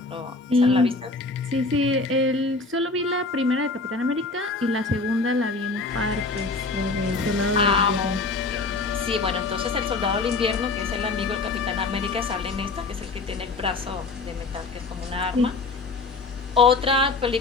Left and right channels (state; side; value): quieter; right; 3.7 dB